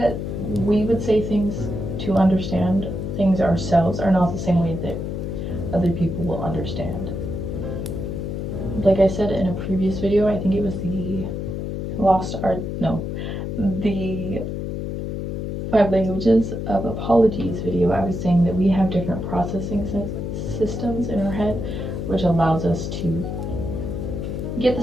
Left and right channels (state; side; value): noise; left; hum, 4 dB below the sound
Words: we would say things to understand things ourselves are not the same way that other people will understand. Like I said in a previous video, I think it was the 5 languages of apologies video. I was saying that we have different processing systems in our head, which allows us to get